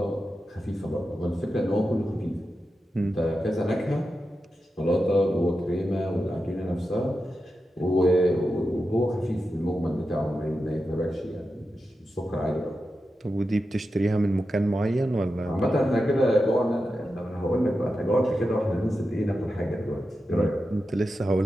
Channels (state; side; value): normal; both; correlation 0.90